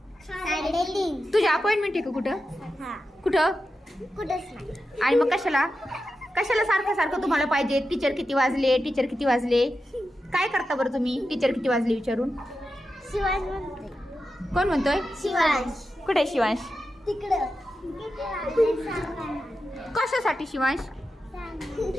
तुझी अपॉइंटमेंट आहे का कुठं हा कुठं कुठंच नाही आणि मग कशाला कशाला सारखं सारखं तुम्हाला पाहिजे टीचर किती वाजले टीचर किती वाजले काय करता बरं तुम्ही टीचर किती वाजले विचारून शिवांश म्हणते कोण म्हणतोय शिवांश कुठे आहे शिवांश तिकडं कशासाठी शिवांश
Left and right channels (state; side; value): normal; both; correlation 0.90